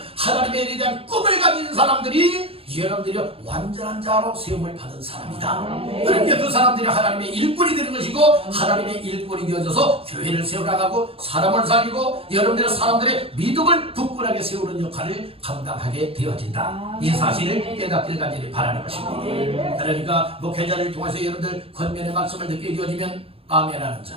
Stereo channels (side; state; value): left; late; 0.27 ms